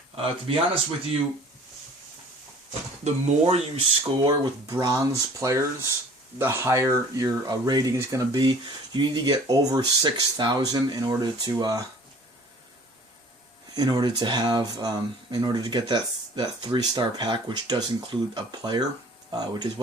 To be honest with you, the more you score with bronze players, the higher your rating is going to be. You need to get over 6,000 in order to get that 3-star pack, which does include a player, which is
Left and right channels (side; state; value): both; normal; correlation 0.49